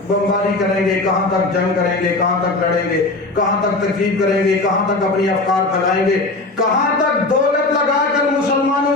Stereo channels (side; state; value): right; quieter; 3.1 dB